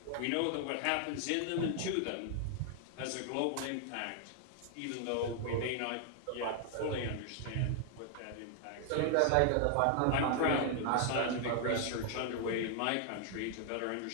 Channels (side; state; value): both; different; correlation 0.00